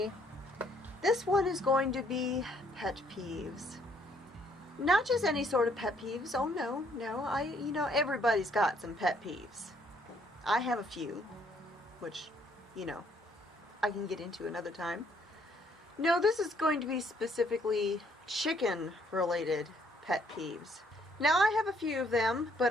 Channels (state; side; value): normal; both; correlation 0.67